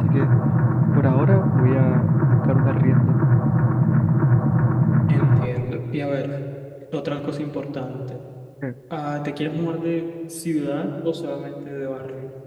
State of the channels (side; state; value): both; identical; correlation 1.00